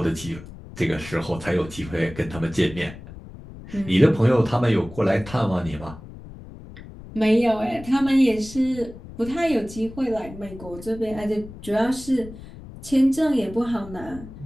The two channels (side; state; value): left; noise; rumble, 15 dB below the sound